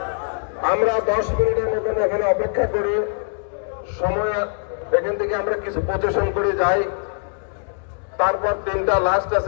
আমরা 10 মিনিটের মতন এখানে অপেক্ষা করি, সময় এখান থেকে আমরা কিছু প্রচেশন করে যাই, তারপর 3টা লাস্ট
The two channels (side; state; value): right; silent; 61 dB below the other